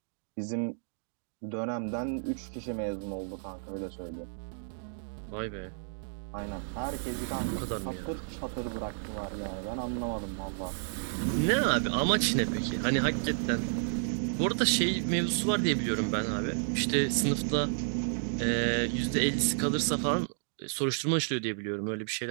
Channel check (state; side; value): silent; left; digital silence